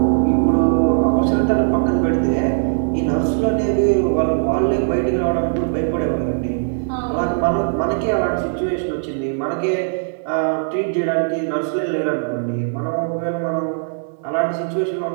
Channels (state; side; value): silent; left; digital silence